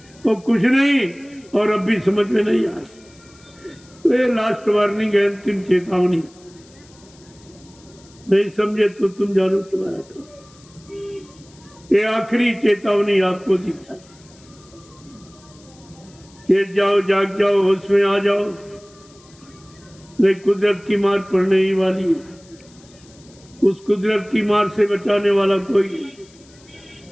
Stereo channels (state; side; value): noise; left; hiss, 27 dB below the sound